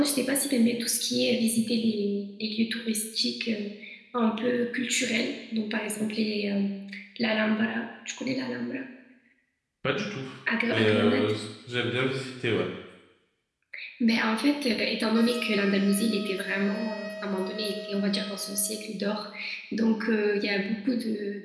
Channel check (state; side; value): identical; both; correlation 1.00